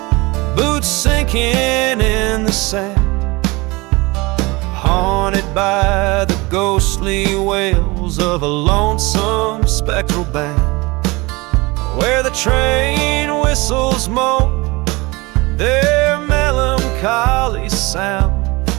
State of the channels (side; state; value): left; quieter; 23.9 dB